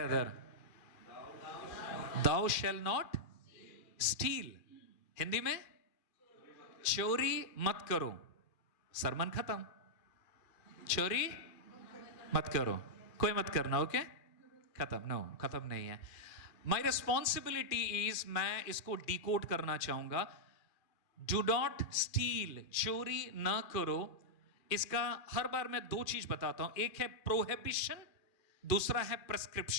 Thou shall not steal. Hindi में चोरी मत करो. सरमन खत्म. चोरी मत करो, कोई मत करना. ओके, खत्म. नो, खत्म नहीं है. माई रिस्पॉन्सिबिलिटी इज, मैं इसको डिकोड करना चाहूंगा. डू नॉट स्टील, चोरी ना करो. इसका हर बार मैं 2 चीज बताता हूं. एक है प्रोहिबिशन, दूसरा है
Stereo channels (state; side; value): late; right; 2.4 ms